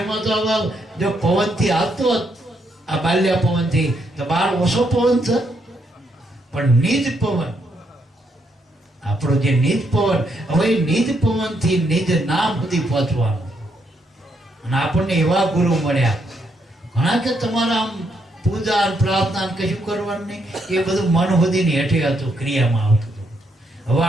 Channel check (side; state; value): both; normal; correlation 0.76